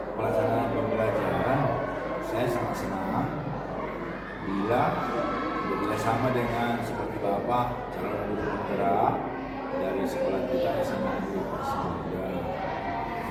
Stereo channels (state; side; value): identical; both; correlation 1.00